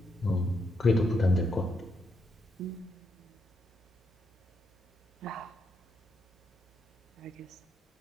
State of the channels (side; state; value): both; normal; correlation 0.79